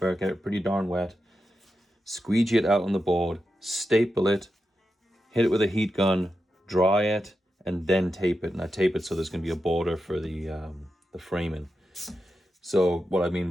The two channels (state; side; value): normal; both; correlation 0.89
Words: get it pretty darn wet, squeegee it out on the board, staple it, hit it with a heat gun, dry it, and then tape it. And I tape it so there's going to be a border for the framing. So what I mean